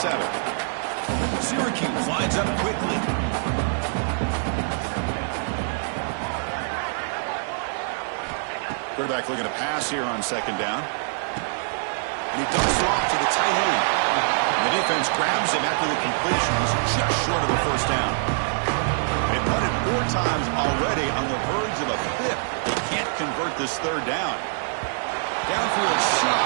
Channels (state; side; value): silent; left; digital silence